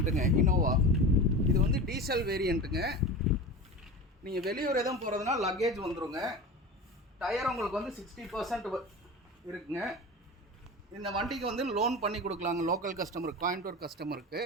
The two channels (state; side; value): normal; both; correlation 0.30